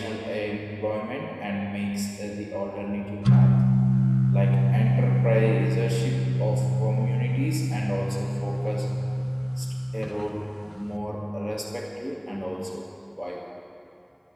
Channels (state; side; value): identical; both; correlation 1.00